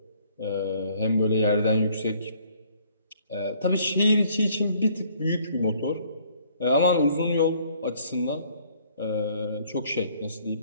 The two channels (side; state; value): both; inverted; correlation -0.61